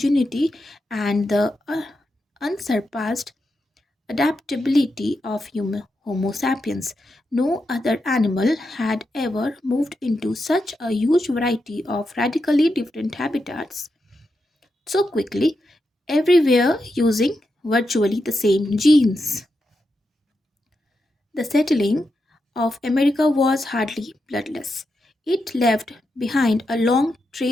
and the unsurpassed adaptability of Homo sapiens. No other animal had ever moved into such a huge variety of radically different habitats so quickly, everywhere using virtually the same genes. The settling of America was hardly bloodless. It left behind a long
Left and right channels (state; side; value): normal; both; correlation 0.86